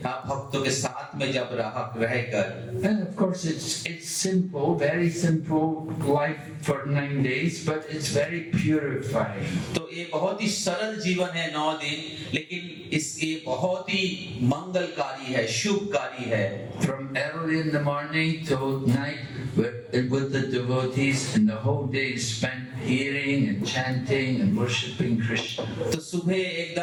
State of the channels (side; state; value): both; identical; correlation 1.00